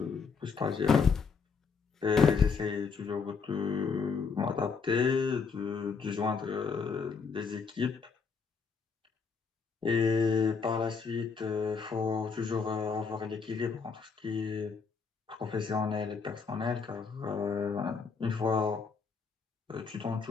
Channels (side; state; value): right; quieter; 5.4 dB